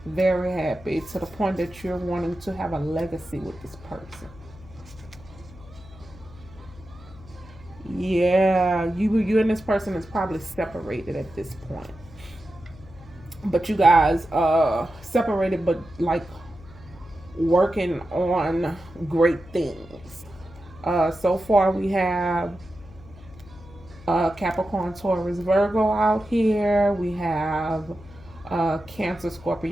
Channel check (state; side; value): noise; left; hum, 20 dB below the sound